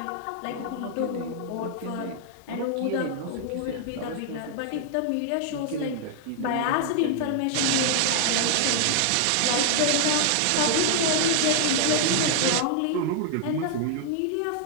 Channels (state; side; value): different; both; correlation 0.00